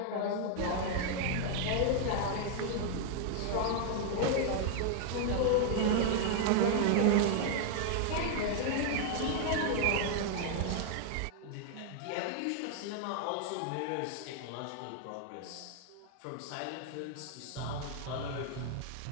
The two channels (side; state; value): both; different; correlation 0.00